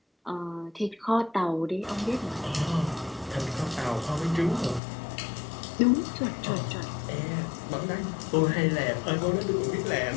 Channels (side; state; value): right; drops out; at 4.8 s